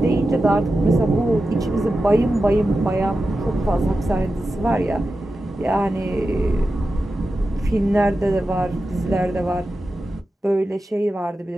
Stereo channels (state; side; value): normal; both; correlation 0.92